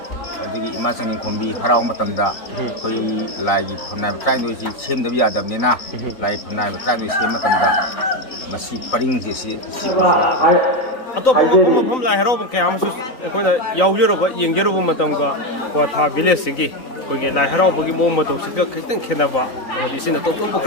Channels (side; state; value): right; late; 3.9 ms